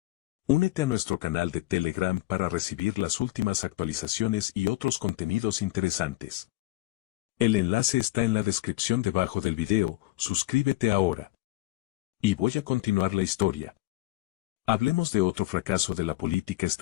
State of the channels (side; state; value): right; quieter; 18.5 dB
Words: Únete a nuestro canal de Telegram para recibir las últimas actualizaciones y otros contenidos interesantes. El enlace está en la descripción debajo del video, suscríbete ahora. Y voy a continuar la historia. Hablemos de otro fracaso de la política